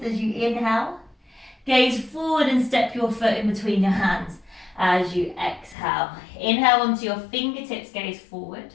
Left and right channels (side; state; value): right; drops out; at 5.8 s